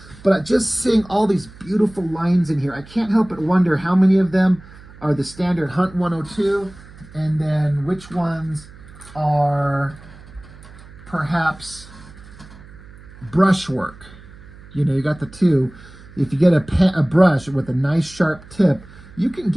But just seeing all these beautiful lines in here, I can't help but wonder how many of them are the standard Hunt 102, and then which ones are perhaps brushwork. You know, you got the two. If you get a brush with a nice sharp tip, you can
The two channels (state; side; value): noise; right; hum, 20 dB below the sound